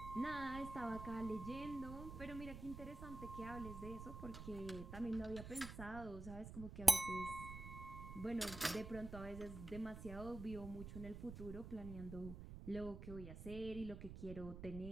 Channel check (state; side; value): noise; right; rumble, 9 dB below the sound